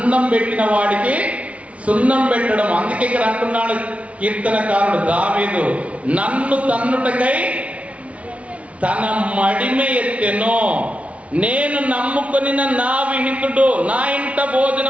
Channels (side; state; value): left; late; 0.064 ms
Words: పెట్టిన వాడికి సున్నం పెట్టడం. అందుకే ఇక్కడ అంటున్నాడు కీర్తనకారుడు దావీదు, నన్ను తన్నుటకై తన మడిమె ఎత్తెను. నేను నమ్ముకొని నా విహితుడు, నా ఇంట